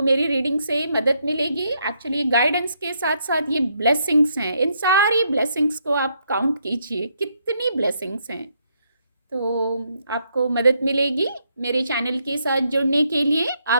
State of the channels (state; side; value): inverted; both; correlation -0.75